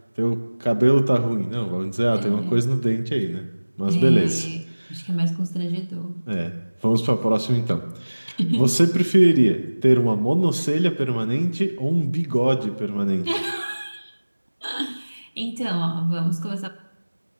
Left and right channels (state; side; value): inverted; both; correlation -1.00